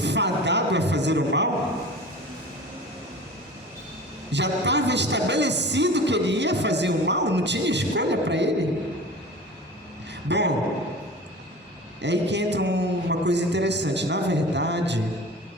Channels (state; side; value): normal; both; correlation 0.37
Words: fadado a fazer o mal? Já estava estabelecido que ele ia fazer o mal? Não tinha escolha para ele? Bom, é aí que entra uma coisa interessante. Na verdade,